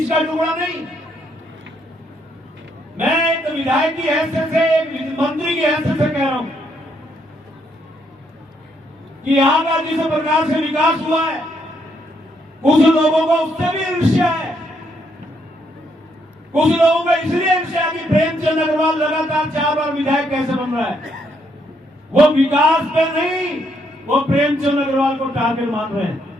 का टुकड़ा नहीं। मैं एक विधायक की हैसियत से, एक मंत्री की हैसियत से कह रहा हूं कि यहां का जिस प्रकार से विकास हुआ है, कुछ लोगों को उससे भी ईर्ष्या है। कुछ लोगों को इसलिए ईर्ष्या कि प्रेमचंद अग्रवाल लगातार 4 बार विधायक कैसे बन रहा है। वो विकास पे नहीं, वो प्रेमचंद अग्रवाल को टारगेट मान रहे हैं।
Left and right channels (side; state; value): both; normal; correlation 0.74